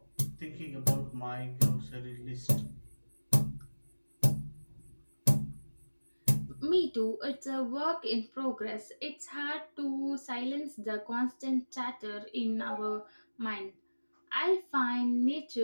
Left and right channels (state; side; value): inverted; both; correlation -1.00